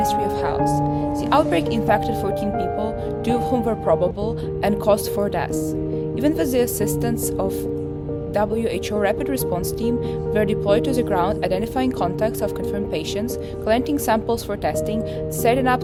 of Health. The outbreak infected 14 people, 2 of whom were probable, and caused 4 deaths. Even with the assistance of WHO rapid response team were deployed to the ground, identifying contacts of confirmed patients, collecting samples for testing, setting up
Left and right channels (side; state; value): both; identical; correlation 1.00